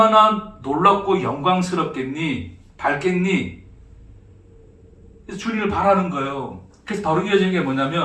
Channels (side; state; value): both; identical; correlation 1.00